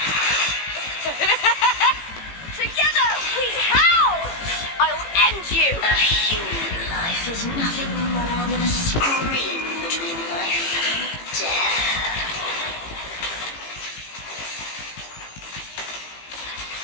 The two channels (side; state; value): right; late; 18 ms